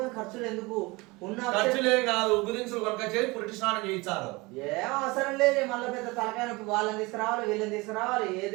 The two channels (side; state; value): left; quieter; 24.1 dB